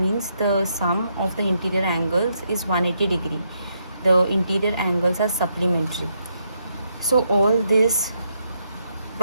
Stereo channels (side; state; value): both; inverted; correlation -0.77